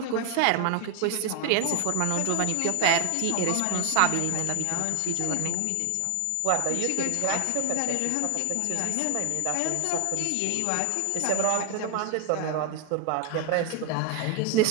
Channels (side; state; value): both; different; correlation 0.00